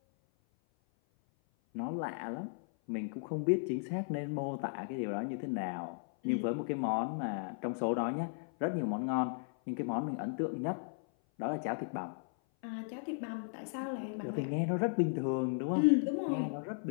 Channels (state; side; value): silent; right; 54 dB below the other